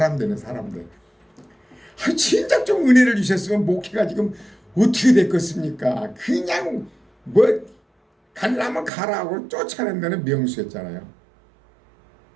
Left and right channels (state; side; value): drops out; left; at 8.9 s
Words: 되는 사람들. 진작 좀 은혜를 주셨으면 목회가 지금 어떻게 됐겠습니까? 그냥 뭐 가려면 가라고 쫓아낸 데는 명수였잖아요.